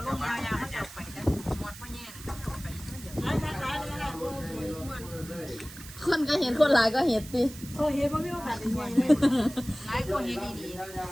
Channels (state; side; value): noise; right; hiss, 16 dB below the sound